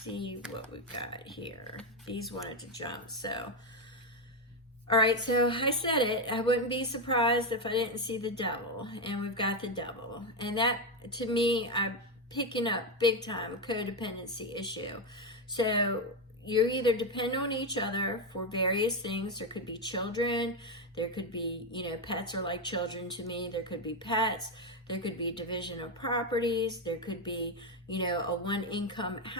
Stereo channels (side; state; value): both; normal; correlation 0.08